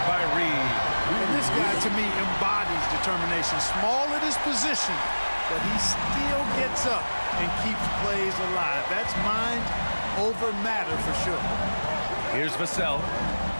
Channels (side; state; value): both; inverted; correlation -1.00